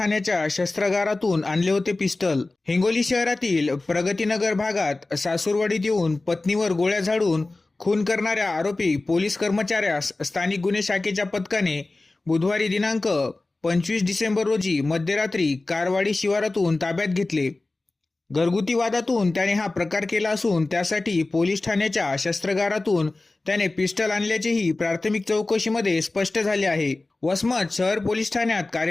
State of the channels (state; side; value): quieter; right; 3.1 dB